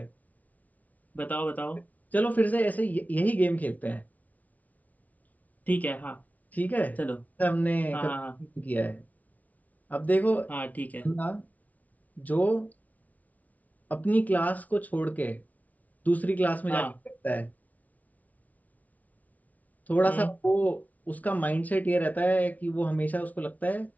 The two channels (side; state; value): right; late; 0.073 ms